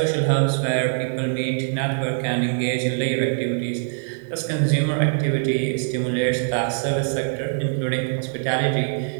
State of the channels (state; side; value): silent; left; digital silence